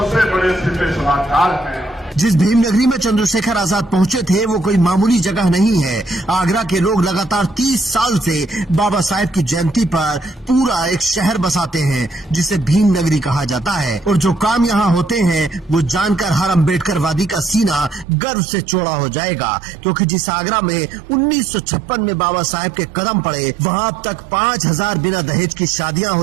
बड़े सिपह सलाहकार हैं। जिस भीम नगरी में चंद्रशेखर आजाद पहुंचे थे वो कोई मामूली जगह नहीं है। आगरा के लोग लगातार 30 साल से बाबा साहेब की जयंती पर पूरा एक शहर बसाते हैं, जिसे भीम नगरी कहा जाता है। और जो काम यहाँ होते हैं वो जानकर हर अम्बेडकरवादी का सीना गर्व से चौड़ा हो जाएगा, क्योंकि जिस आगरा में 1956 में बाबा साहेब के कदम पड़े, वहाँ अब तक 5000 बिना दहेज की शादियाँ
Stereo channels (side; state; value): left; drops out; at 18.1 s